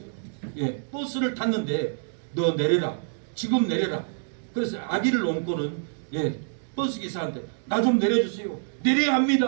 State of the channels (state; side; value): silent; left; digital silence